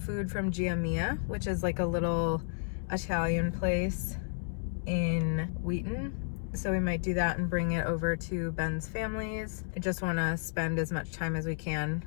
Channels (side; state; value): right; silent; digital silence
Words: from Gia Mia, which is like a little Italian place in Wheaton. So we might do that and bring it over to Ben's family's. I just want to spend as much time as we can